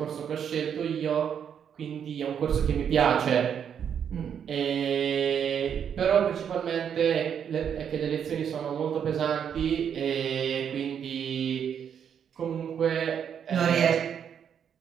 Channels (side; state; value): left; quieter; 8.2 dB